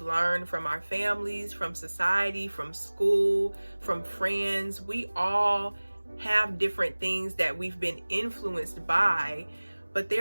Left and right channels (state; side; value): inverted; both; correlation -1.00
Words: from our families, from society, from school, from friends. We all have different things that we've been influenced by, but